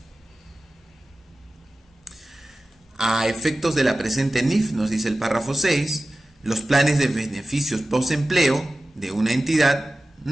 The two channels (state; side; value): normal; both; correlation 0.95